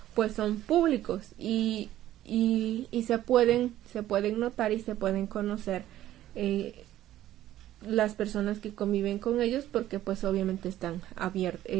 pues son públicos y se pueden notar y se pueden conocer las personas que conviven con ellos, porque pues obviamente está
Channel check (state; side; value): quieter; left; 13.4 dB